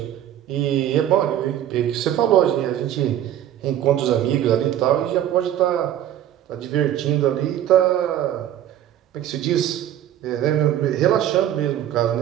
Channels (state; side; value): quieter; left; 11.5 dB